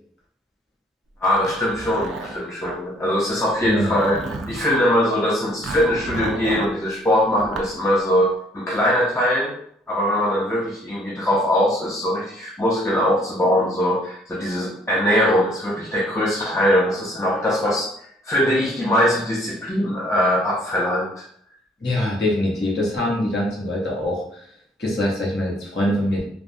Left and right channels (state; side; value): normal; both; correlation 0.61